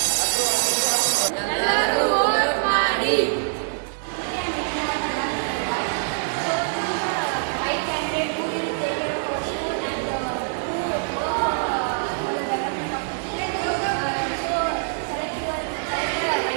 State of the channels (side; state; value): left; silent; digital silence